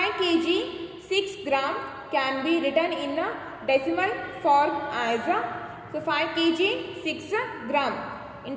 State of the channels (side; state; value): both; identical; correlation 1.00